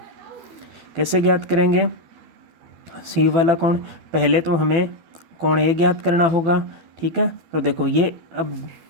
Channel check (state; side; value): late; left; 12 ms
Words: कैसे ज्ञात करेंगे C वाला कोण, पहले तो हमें कोण A ज्ञात करना होगा। ठीक है, तो देखो ये, अब